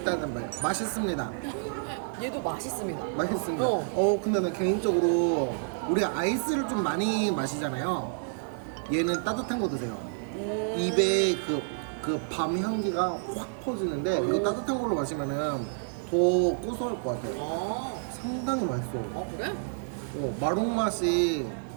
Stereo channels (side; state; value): left; silent; digital silence